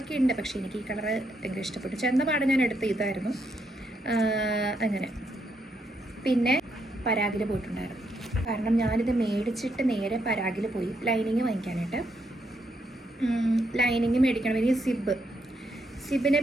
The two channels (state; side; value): normal; both; correlation 0.77